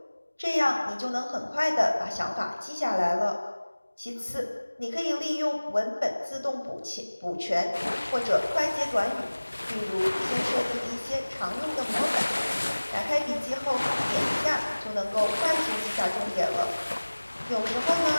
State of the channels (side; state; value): both; inverted; correlation -1.00